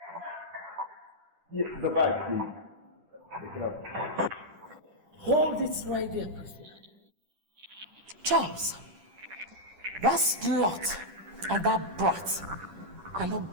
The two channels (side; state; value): left; late; 10 ms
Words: Yes, the bag, please. Pick it up. Hold it right there, Priscilla. Charles, that slut and that brat are not